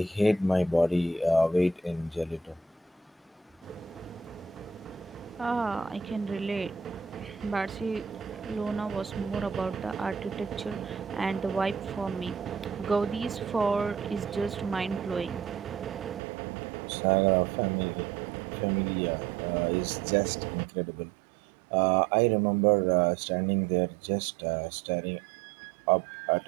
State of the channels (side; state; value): left; drops out; at 16.2 s